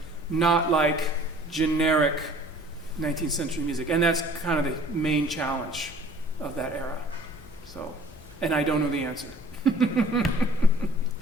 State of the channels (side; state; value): both; normal; correlation 0.51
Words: not like generic 19th century music. And that's kind of the main challenge of that era. So, and I don't know the answer.